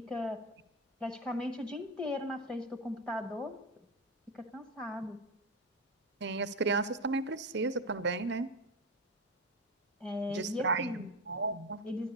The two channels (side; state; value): both; normal; correlation 0.16